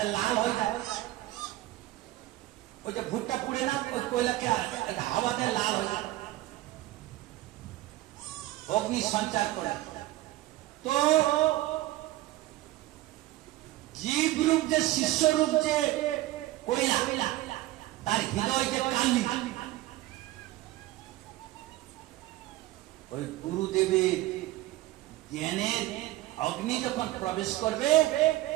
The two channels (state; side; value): quieter; left; 16.7 dB